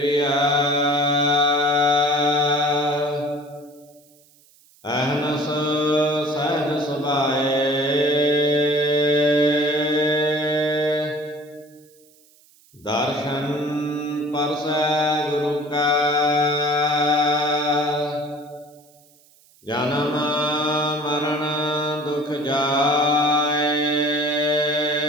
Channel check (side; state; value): right; noise; hiss, 30 dB below the sound